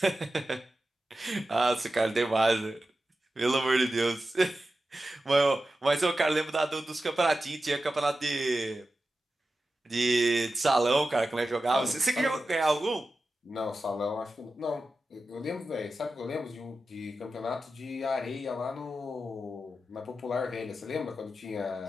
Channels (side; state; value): both; normal; correlation 0.93